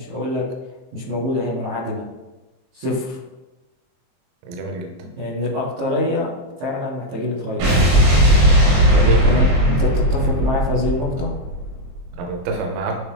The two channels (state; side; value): late; left; 23 ms